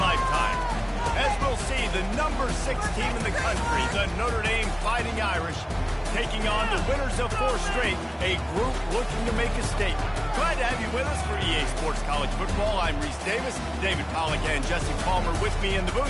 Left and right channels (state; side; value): identical; both; correlation 1.00